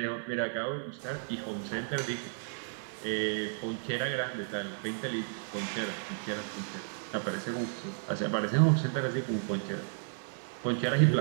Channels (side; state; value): left; silent; 56 dB below the other